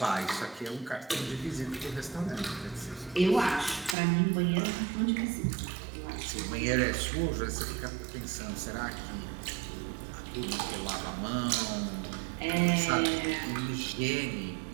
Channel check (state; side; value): drops out; left; at 4.0 s